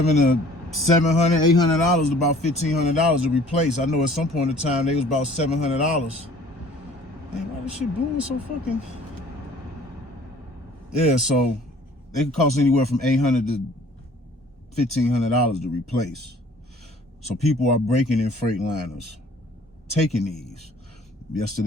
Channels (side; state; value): both; normal; correlation 0.52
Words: $800 to about $1,500 to replace. I know at some point in time they was about $700. Man, why this shit blowing so fucking? Yeah, so they can cost anywhere from $800 to $1,500 to replace. So people are breaking in Freightliners, taking these.